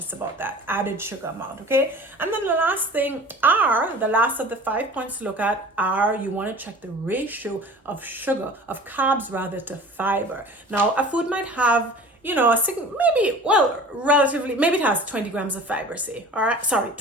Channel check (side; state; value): both; normal; correlation 0.42